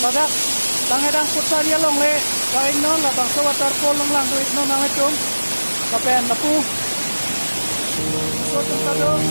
badak dang edang putar ya long le ka in non la bang so water pol long lang duit no na le tum ka pen na pu so tum ta do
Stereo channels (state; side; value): inverted; both; correlation -1.00